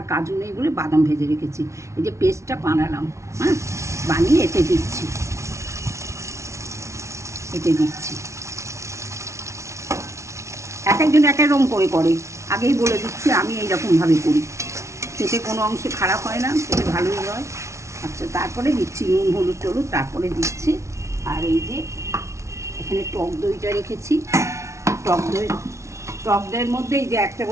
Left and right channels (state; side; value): late; left; 0.14 ms